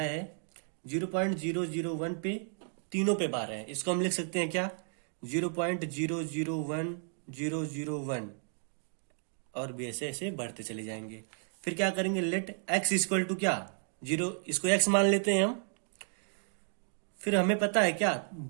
0.001 पे तीनों पे बार है, इसको हम लिख सकते हैं क्या 0.001001, और भी ऐसे ऐसे बढ़ते चले जाएंगे। फिर क्या करेंगे, लेट x इक्वल टू क्या 0, इसको x मान लेते हैं हम। फिर हमें पता है क्या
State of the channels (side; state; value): left; silent; 56 dB below the other